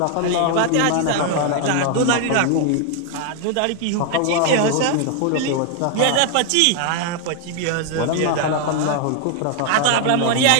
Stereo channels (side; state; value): both; different; correlation 0.00